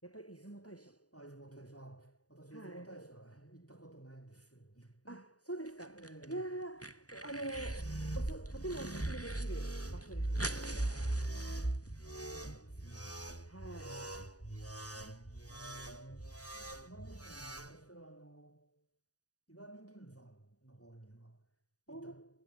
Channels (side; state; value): right; late; 0.67 ms